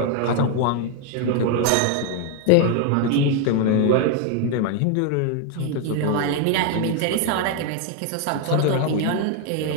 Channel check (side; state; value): both; different; correlation 0.01